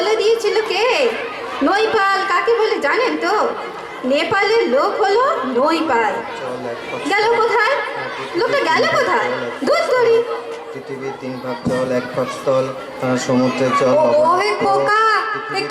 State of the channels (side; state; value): both; identical; correlation 1.00